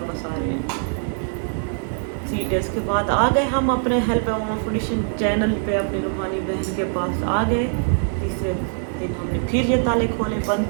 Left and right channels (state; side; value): silent; left; 61 dB below the other